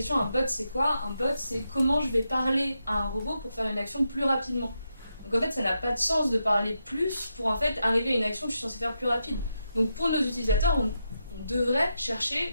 un bot c'est quoi? Un bot c'est comment je vais parler à un robot pour faire une action plus rapidement. Donc en fait ça n'a pas de sens de parler plus pour en fait arriver à une action que je suis censée faire plus rapide. Donc pour nos utilisateurs, on devrait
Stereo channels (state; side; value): inverted; both; correlation -0.85